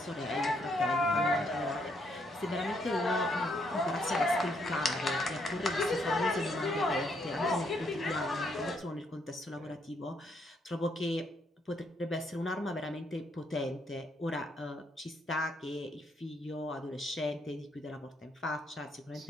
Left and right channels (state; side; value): normal; both; correlation 0.73